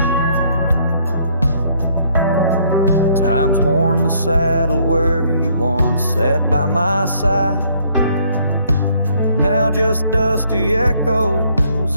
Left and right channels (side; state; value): both; inverted; correlation -0.65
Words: Time's worn the saddle where you once sat by my side. Now just dusty